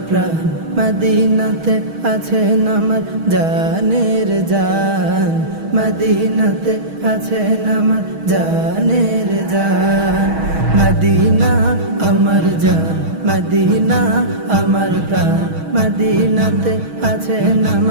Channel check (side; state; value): left; late; 6.3 ms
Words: प्राण मदीनाते आছেন আমার জানের জান মদিনাতে আছেন আমার জানের জান মদিনা আমার জান মদিনা আমার প্রাণ মদিনাতে আছেন